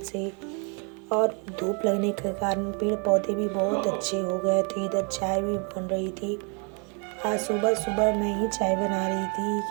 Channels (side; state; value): left; quieter; 36.3 dB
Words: से, और धूप लगने के कारण पेड़ पौधे भी बहुत अच्छे हो गए थे। इधर चाय भी बन रही थी। आज सुबह सुबह मैं ही चाय बना रही थी